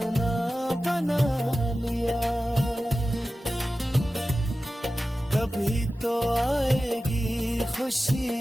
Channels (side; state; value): both; normal; correlation 0.95